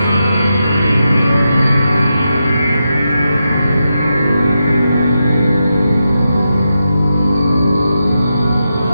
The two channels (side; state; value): both; inverted; correlation -0.87